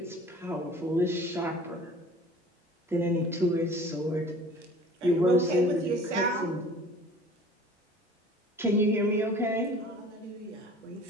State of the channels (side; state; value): both; normal; correlation 0.46